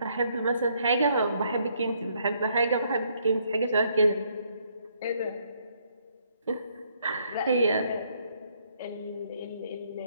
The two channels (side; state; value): both; inverted; correlation -0.70